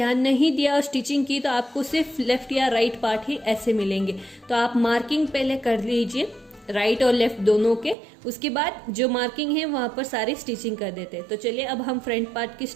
नहीं दिया और स्टिचिंग की तो आपको सिर्फ लेफ्ट या राइट पार्ट ही ऐसे मिलेंगे। तो आप मार्किंग पहले कर लीजिए राइट और लेफ्ट दोनों के, उसके बाद जो मार्किंग है वहां पर सारी स्टिचिंग कर देते हैं। तो चलिए अब हम फ्रंट पार्ट की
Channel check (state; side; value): drops out; left; at 8.0 s